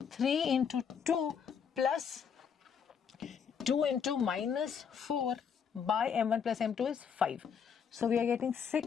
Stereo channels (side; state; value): right; quieter; 7.1 dB